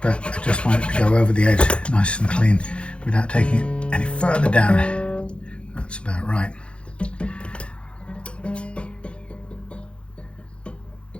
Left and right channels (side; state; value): right; late; 0.058 ms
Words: but I just want it to go over the edge nice and clean without taking it any further down. That's about right.